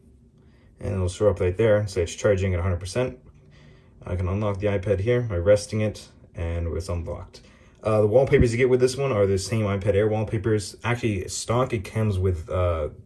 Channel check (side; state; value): both; identical; correlation 1.00